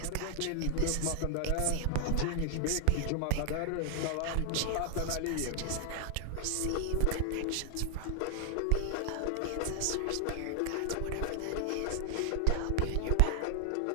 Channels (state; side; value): different; both; correlation 0.00